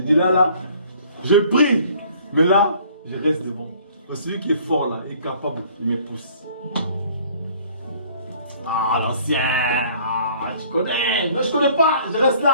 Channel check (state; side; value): inverted; both; correlation -0.56